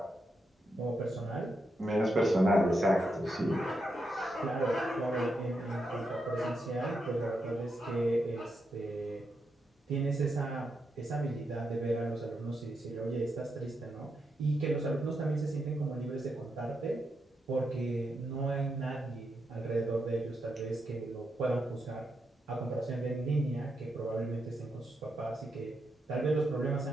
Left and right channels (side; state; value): both; normal; correlation 0.83